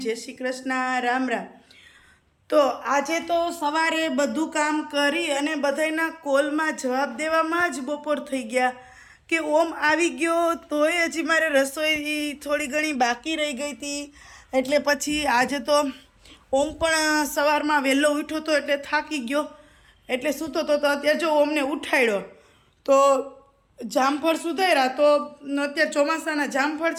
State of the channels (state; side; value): identical; both; correlation 1.00